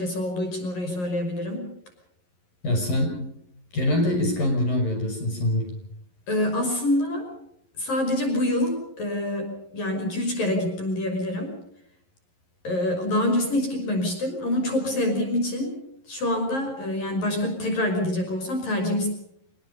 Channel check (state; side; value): late; right; 11 ms